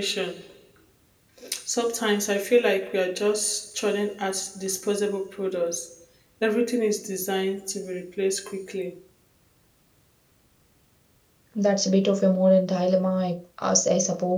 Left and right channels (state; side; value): identical; both; correlation 1.00